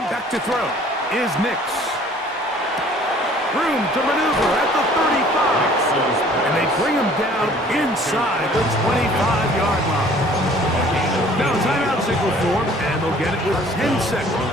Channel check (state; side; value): normal; both; correlation 0.53